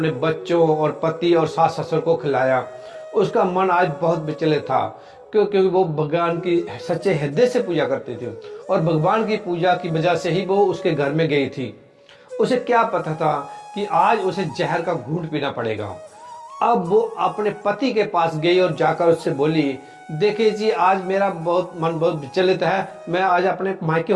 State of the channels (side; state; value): both; identical; correlation 1.00